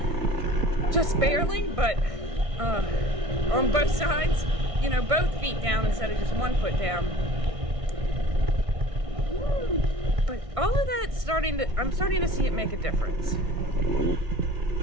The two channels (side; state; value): left; late; 1.6 ms